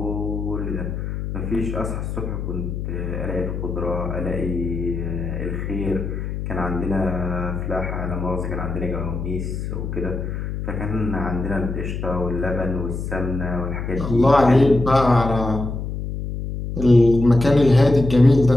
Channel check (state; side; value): noise; left; hum, 5 dB below the sound